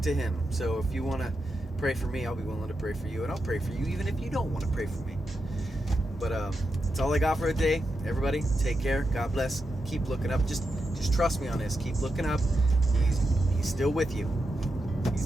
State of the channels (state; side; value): normal; both; correlation 0.87